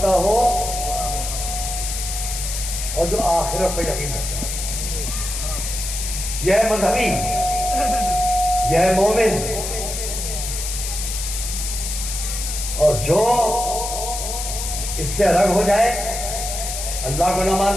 ہو، اور جو آخرت پہ یقین کرتا ہے۔ یہ ہے مذہبی، یہ ہے مومن۔ اور جو اس سے الگ ہو جائے، اللہ کو نہ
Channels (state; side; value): noise; left; hiss, 5 dB below the sound